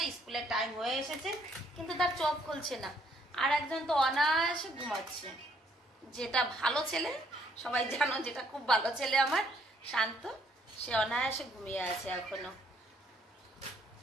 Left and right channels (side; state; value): both; normal; correlation 0.67